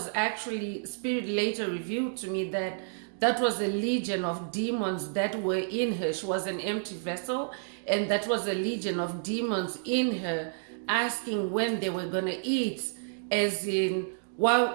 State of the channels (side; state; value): left; silent; digital silence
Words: actually, Spirit later revealed to me that that was a legion of demons that were in her. She was an empty vessel, and that was a legion of demons in her, asking when they were going to eat, as in,